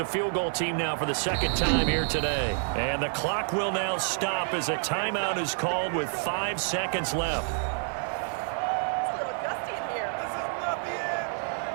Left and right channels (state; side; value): silent; left; 59 dB below the other